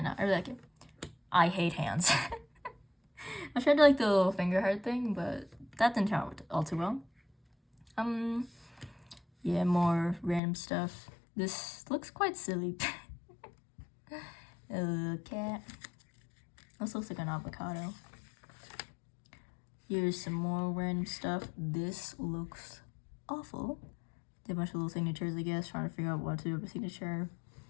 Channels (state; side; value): drops out; right; at 10.4 s